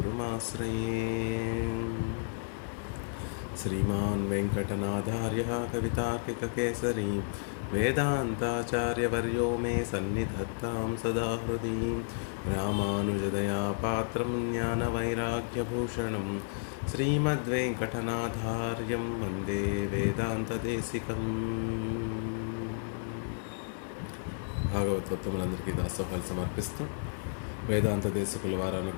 श्रीमान् वेङ्कटनाथार्यः कवितार्किककेसरी वेदान्ताचार्यवर्यो मे सन्निधत्तां सदा हृदि। रामानुजदयापात्रं ज्ञानवैराग्यभूषणं श्रीमद्वेङ्कटनाथार्यं वन्दे వేదాంతదేశికం। భాగవతోత్తములందరికీ దాసోహాలు సమర్పిస్తూ వేదాంత దేశికుల వారు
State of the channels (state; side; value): silent; right; 56 dB below the other